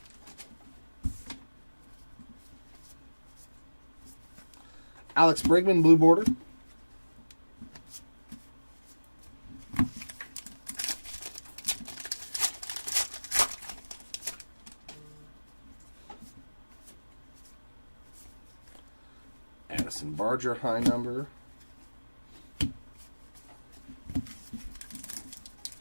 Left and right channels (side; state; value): both; inverted; correlation -1.00